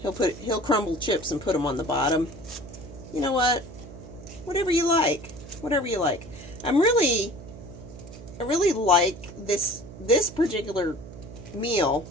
crumble chips and put them on the bottom. You know what? Whatever you like. Whatever you like. I really like this particular meal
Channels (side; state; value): right; noise; hum, 15 dB below the sound